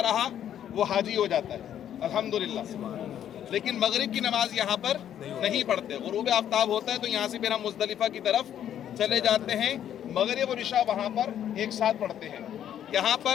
رہا وہ حاجی ہو جاتا ہے الحمدللہ۔ لیکن مغرب کی نماز یہاں پر نہیں پڑھتے، غروب آفتاب ہوتا ہے تو یہاں سے پھر ہم مزدلفہ کی طرف چلے جاتے ہیں، مغرب اور عشاء وہاں پر ایک ساتھ پڑھتے ہیں۔ یہاں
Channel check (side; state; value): right; quieter; 10.2 dB